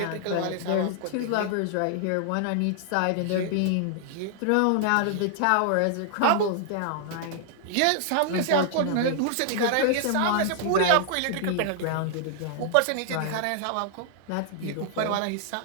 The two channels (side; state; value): both; different; correlation 0.00